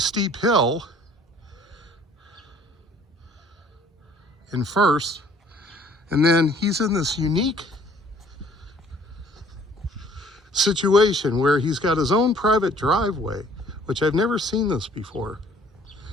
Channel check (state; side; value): normal; both; correlation 0.56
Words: hill in first, and then he's in this unique situation where he's got his own private driveway, which I've never seen this before.